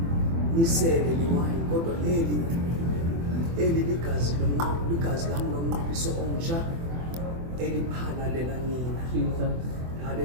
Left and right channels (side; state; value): left; late; 24 ms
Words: nisele lewayini kodwa eli ligazi lami lomnqophiso omsha eliphalalela nina.